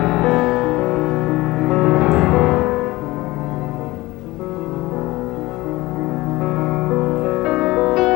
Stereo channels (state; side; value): quieter; right; 19.6 dB